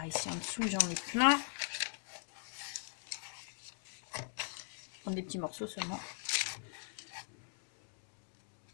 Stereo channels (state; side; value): silent; right; 51 dB below the other